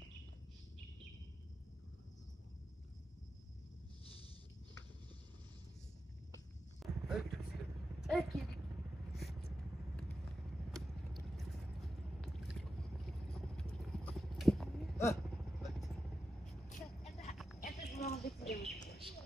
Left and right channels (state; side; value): normal; both; correlation 0.90